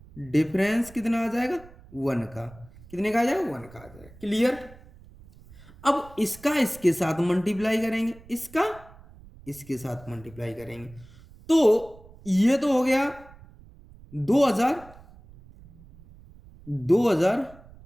डिफरेंस कितना आ जाएगा 1 का। कितने का आ जाएगा 1 का आ जाएगा। क्लियर। अब इसका इसके साथ मल्टीप्लाई करेंगे, इसका इसके साथ मल्टीप्लाई करेंगे, तो ये तो हो गया 2000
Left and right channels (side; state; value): right; noise; rumble, 22 dB below the sound